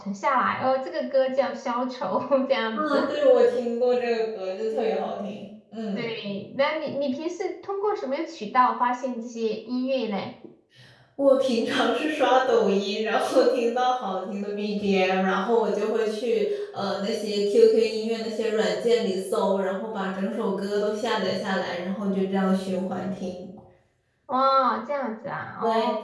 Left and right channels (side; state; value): both; identical; correlation 1.00